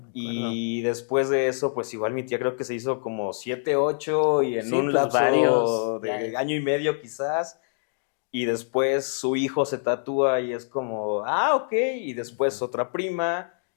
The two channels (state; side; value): silent; right; digital silence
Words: acuerdo. y después de eso, pues igual mi tía creo que se hizo como 7, 8 y en Sí, un pues varios, lapso ya. de año y medio quizás. Y después su hijo se tatúa y es como, ok, y después Ujú. otra prima,